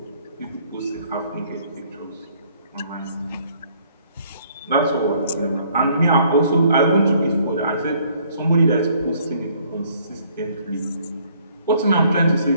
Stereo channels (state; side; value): inverted; both; correlation -0.62